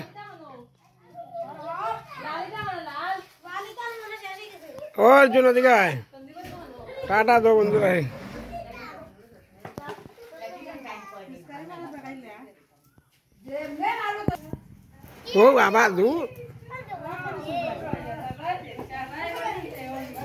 অর্জুন ওদিকে টাটা দো বন্ধু ভাই। ও বাবা দু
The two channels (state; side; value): identical; both; correlation 1.00